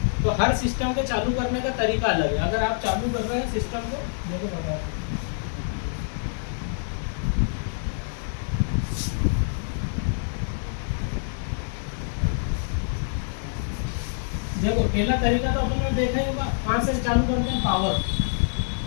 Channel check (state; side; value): silent; right; digital silence